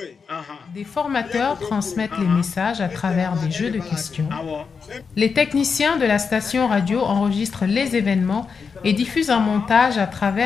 Des formateurs transmettent les messages à travers des jeux de questions. Les techniciens de la station radio enregistrent les événements et diffusent un montage à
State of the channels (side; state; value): right; quieter; 5.5 dB